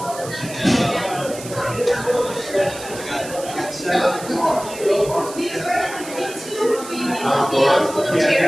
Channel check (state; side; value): noise; right; hiss, 13 dB below the sound